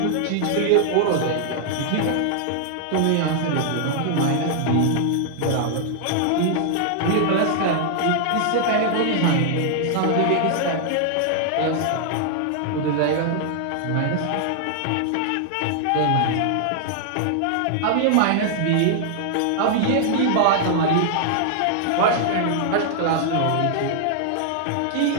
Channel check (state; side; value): different; both; correlation -0.01